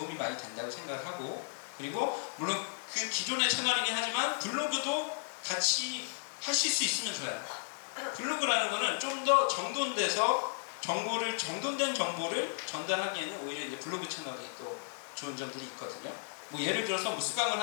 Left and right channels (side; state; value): right; silent; digital silence